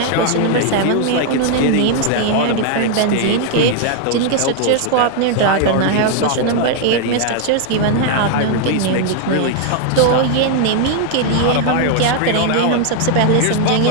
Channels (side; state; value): both; different; correlation 0.00